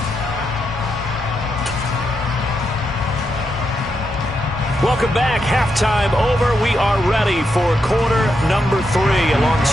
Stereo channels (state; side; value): normal; both; correlation 0.83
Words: Welcome back. Halftime over. We are ready for quarter number 3.